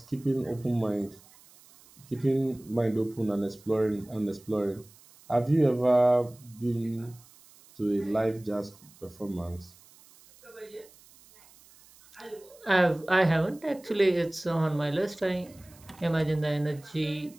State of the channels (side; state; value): right; noise; hiss, 25 dB below the sound